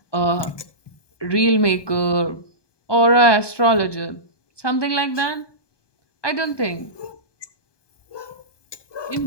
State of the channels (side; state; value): right; late; 1.2 ms